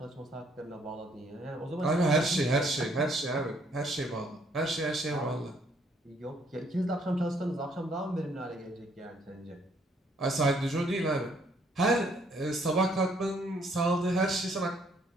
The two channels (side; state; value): both; normal; correlation 0.66